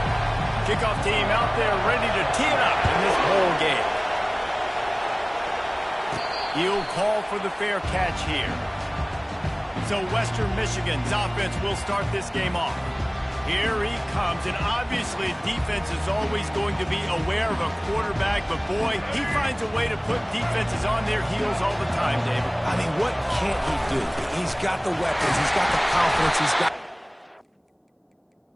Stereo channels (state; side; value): identical; both; correlation 1.00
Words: Kickoff team out there ready to tee it up in this bowl game. He'll call for the fair catch here. So Western Michigan's offense will start this game off. Here he comes, and obviously defense is always going to be aware of a quarterback, but boy, he finds a way to put defenses on their heels all the time, David. I mean, what can't he do? He's got the weapons, he's got the confidence, he's got...